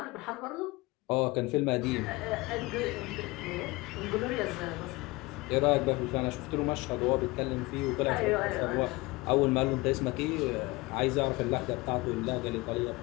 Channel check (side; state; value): right; quieter; 22.7 dB